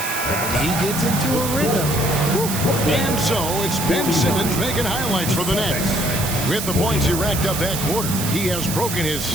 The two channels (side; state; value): right; noise; hiss, 5 dB below the sound